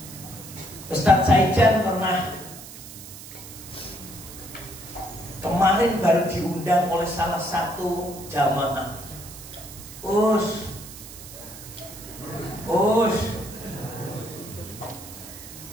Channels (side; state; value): right; noise; hiss, 14 dB below the sound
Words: Ustaz Saijan pernah kemarin baru diundang oleh salah satu jamaah.